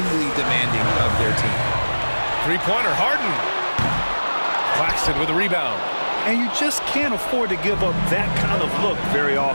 demanding of their team. Three-pointer, Harden. Claxton with a rebound. And you just can't afford to give up that kind of look very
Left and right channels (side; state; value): both; inverted; correlation -1.00